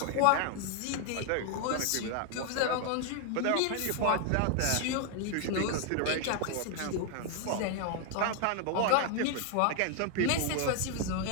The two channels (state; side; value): different; both; correlation 0.01